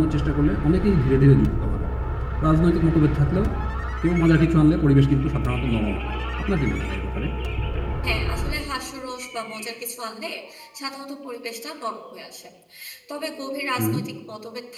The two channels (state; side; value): identical; both; correlation 1.00